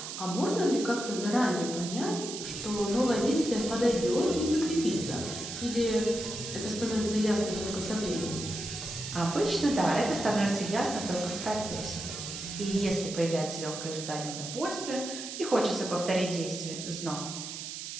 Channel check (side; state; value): right; noise; hiss, 8 dB below the sound